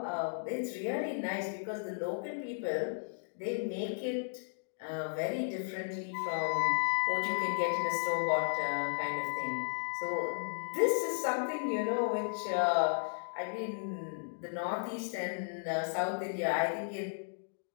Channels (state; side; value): silent; right; digital silence